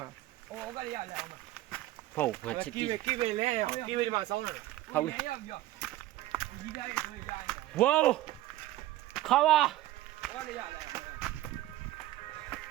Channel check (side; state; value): left; quieter; 15.6 dB